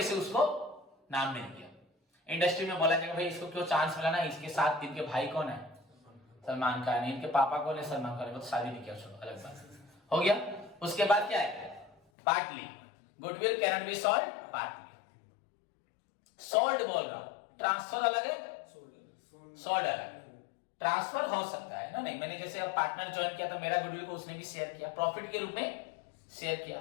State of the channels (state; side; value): drops out; right; at 12.0 s